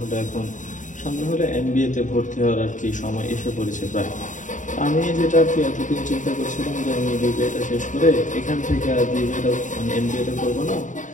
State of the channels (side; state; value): right; late; 0.36 ms